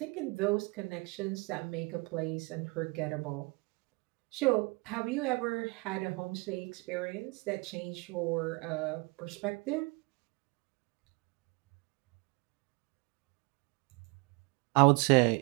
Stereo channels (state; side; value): quieter; left; 29.0 dB